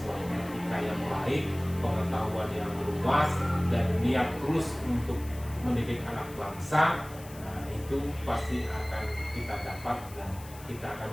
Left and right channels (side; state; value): left; noise; hiss, 19 dB below the sound